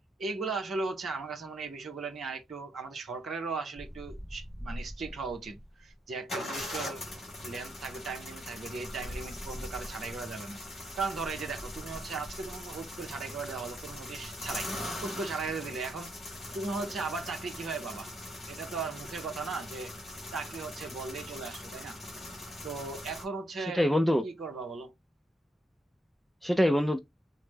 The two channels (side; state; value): both; normal; correlation 0.78